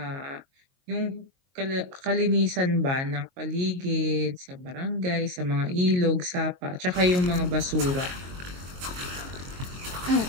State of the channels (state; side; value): late; left; 22 ms